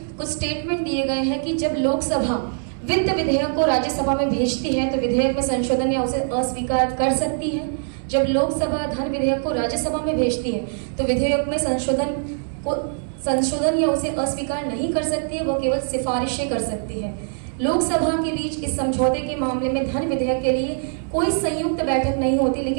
कुछ स्टेटमेंट दिए गए हैं कि जब लोकसभा वित्त विधेयक को राज्यसभा में भेजती है तो विधेयक में संशोधन या उसे अस्वीकार कर सकती है। जब लोकसभा धन विधेयक को राज्यसभा में भेजती है तो विधेयक में संशोधन या उसे अस्वीकार नहीं कर सकती है, वो केवल सिफारिशें कर सकती है। लोकसभा के बीच इस समझौते के मामले में धन विधेयक के लिए कोई संयुक्त बैठक नहीं होती,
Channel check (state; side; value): silent; left; digital silence